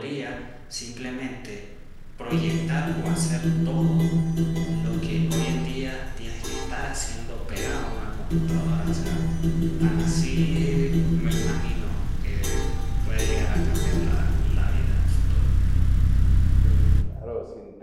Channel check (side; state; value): both; identical; correlation 1.00